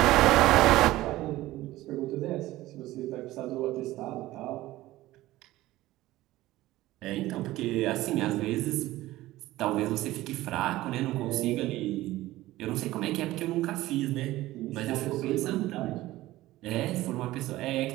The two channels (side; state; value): left; quieter; 16.8 dB